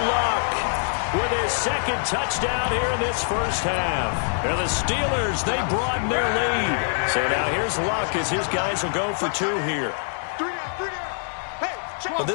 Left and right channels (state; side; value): silent; right; digital silence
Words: Luck with his 2nd touchdown here in this first half. And the Steelers, they broaden their lead. So now here's Luck as his guys will go for 2 here. Well,